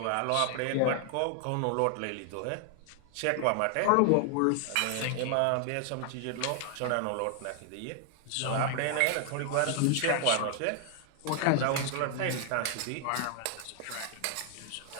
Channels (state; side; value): different; both; correlation 0.00